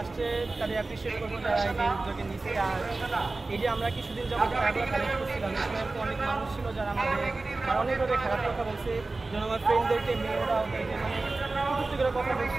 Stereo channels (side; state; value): left; quieter; 3.4 dB